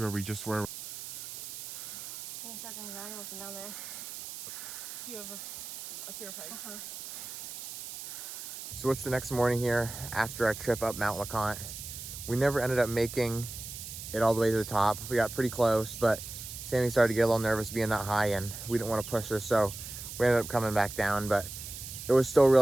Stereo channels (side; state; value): right; noise; hiss, 10 dB below the sound